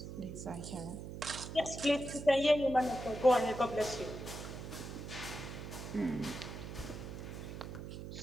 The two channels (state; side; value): noise; right; hum, 9 dB below the sound